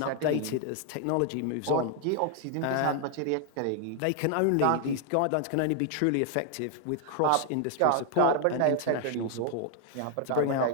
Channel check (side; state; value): both; different; correlation 0.00